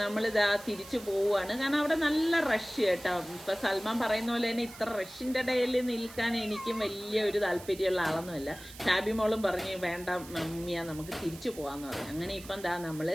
നമ്മളിതാ തിരിച്ചു പോവുകയാണ്. കാരണം അവിടെ നല്ല റഷ് കേട്ടോ. ഇപ്പൊ സൽമാൻ പറയുന്ന പോലെ തന്നെ ഇത്ര റഷിന്റെ ഇടയിൽ നിൽക്കാൻ എനിക്കും വലിയ ഒരു താല്പര്യമുള്ള ആളൊന്നുമല്ല. ഷാബി മോളും പറഞ്ഞു വേണ്ട മമ്മിയാ നമുക്ക് തിരിച്ചു പോവാന്ന് പറഞ്ഞു. അങ്ങനെ ഇപ്പം എന്താ നമ്മള്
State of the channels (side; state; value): right; noise; hiss, 17 dB below the sound